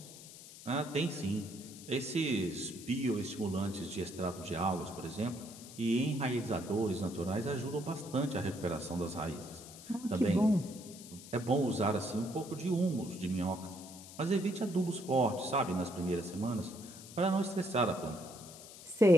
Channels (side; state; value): left; noise; hiss, 16 dB below the sound